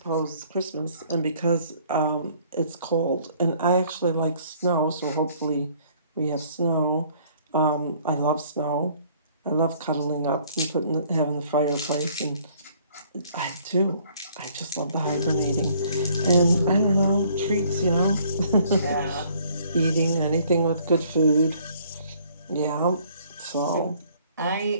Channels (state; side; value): inverted; both; correlation -0.60